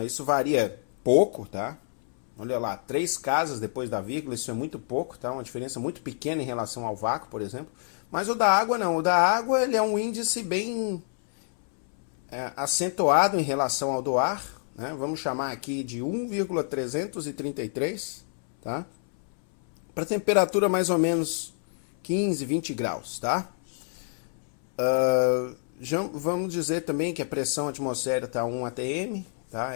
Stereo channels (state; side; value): silent; right; 60 dB below the other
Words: Isso varia pouco, tá? Olha lá, 3 casas depois da vírgula, isso é muito pouco, tá? Uma diferença muito pequena em relação ao vácuo, por exemplo. Mas o da água não, o da água ele é um índice bem acentuado em relação ao do ar, né? Vamos chamar aqui de 1,333, tá? Para temperatura mais ou menos 15, 20 graus, tá? Vamos dizer também que a pressão atmosférica está 1 atm, tá?